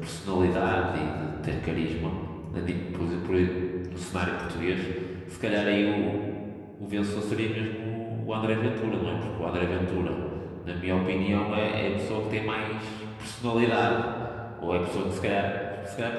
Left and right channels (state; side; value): identical; both; correlation 1.00